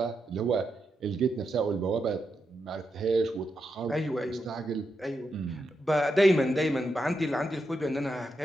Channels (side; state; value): both; normal; correlation 0.85